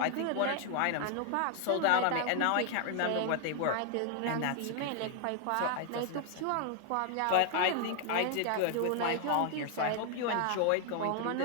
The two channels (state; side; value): different; both; correlation 0.00